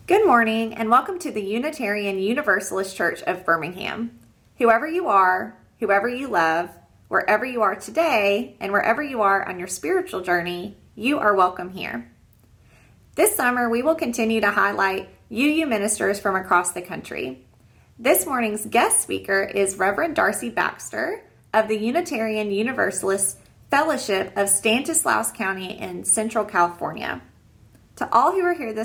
Good morning and welcome to the Unitarian Universalist Church of Birmingham. Whoever you are, whoever you love, wherever you are today, and wherever you are on your spiritual journey, you are welcome here. This summer, we will continue to highlight UU ministers from across the country. This morning's guest speaker is Reverend Darcy Baxter of the Unitarian Universalist Fellowship of Stanislaus County in Central California. To all who are here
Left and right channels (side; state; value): both; identical; correlation 1.00